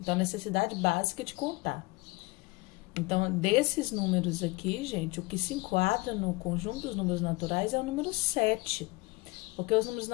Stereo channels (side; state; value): right; quieter; 23.8 dB